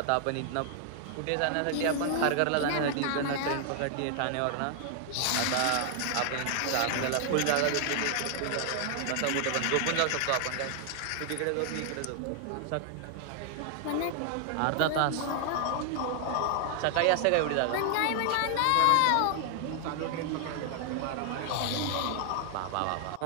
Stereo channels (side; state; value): both; different; correlation 0.00